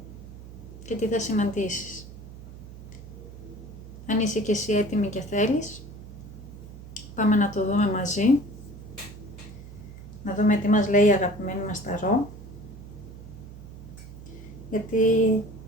και τι θα συναντήσεις. Αν είσαι και εσύ έτοιμη και θέλεις, πάμε να το δούμε μαζί. Να δούμε τι μας λέει η αγαπημένη μας ταρό. Γιατί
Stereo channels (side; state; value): right; noise; hum, 15 dB below the sound